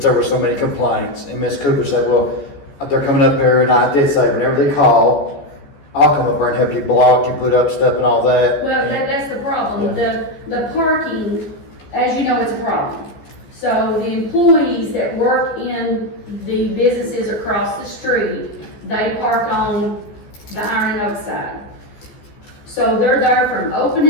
there were so many complaints. And Ms. Cooper said, well, they're coming up here, and I did say, whenever they call, I'll come up there and help you block and put up stuff and all that. well, that's the problem. The parking, as you know, it's a problem. So the employees that work in the businesses across the street, they park on the Iron Oak side. So they're there from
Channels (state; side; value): late; right; 14 ms